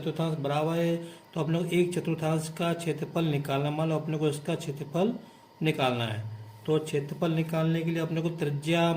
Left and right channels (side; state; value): both; identical; correlation 1.00